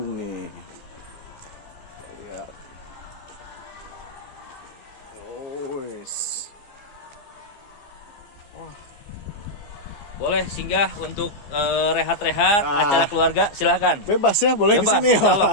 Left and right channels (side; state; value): right; late; 15 ms